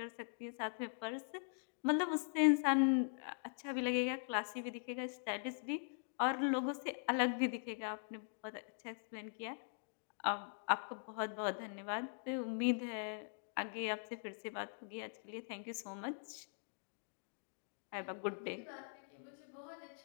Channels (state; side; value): silent; right; digital silence